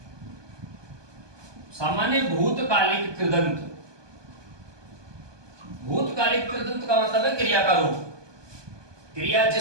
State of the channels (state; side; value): late; left; 1.2 ms